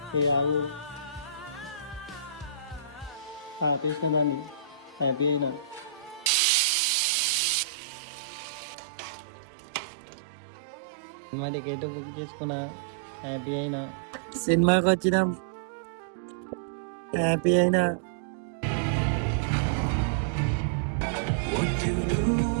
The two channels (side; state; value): left; drops out; at 6.3 s